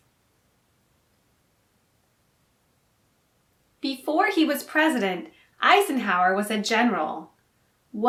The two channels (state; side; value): identical; both; correlation 1.00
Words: Before he was president, Eisenhower was a general.